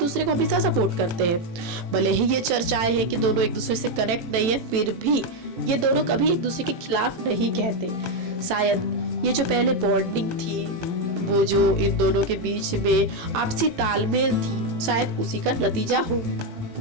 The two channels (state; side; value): late; left; 18 ms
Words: को हमेशा सपोर्ट करते हैं। भले ही ये चर्चाएं हैं कि दोनों एक दूसरे से कनेक्ट नहीं है, फिर भी ये दोनों कभी एक दूसरे के खिलाफ नहीं कहते। शायद ये जो पहले बॉन्डिंग थी, वो जो इन दोनों के बीच में आपसी तालमेल थी, शायद उसी का नतीजा हो।